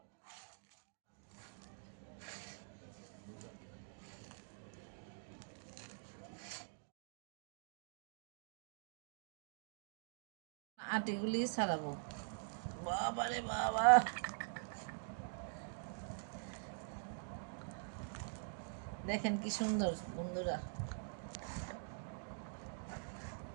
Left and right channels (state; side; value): silent; left; digital silence